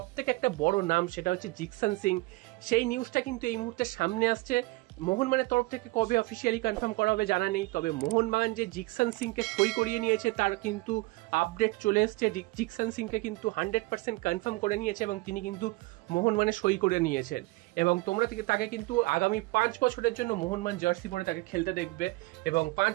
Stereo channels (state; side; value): quieter; left; 23.2 dB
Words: থেকে একটা বড় নাম, সেটা হচ্ছে জিকসন সিং। সেই নিউজটা কিন্তু এই মুহূর্তে সামনে আসছে। মোহনবাগানের তরফ থেকে কবে অফিসিয়ালি কনফার্ম করা হবে জানা নেই, তবে মোহনবাগান যে জিকসন সিংকে সই করিয়ে নিয়েছে তার কিন্তু আপডেট চলে এসছে। জিকসন সিংকে কিন্তু 100% কনফার্ম করে নিয়েছে এবং তিনি কিন্তু মোহনবাগানে সই করে নিয়েছেন এবং তোমরা তাকে কিন্তু আগামী 5 বছরের জন্য মোহনবাগান জার্সি পরে তাকে খেলতে দেখবে এবং 5